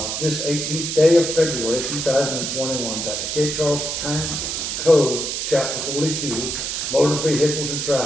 this 18th day of February 2021 that the Cape Charles Town Code, Chapter 42, Motor Vehicles and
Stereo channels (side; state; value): right; noise; hiss, 3 dB below the sound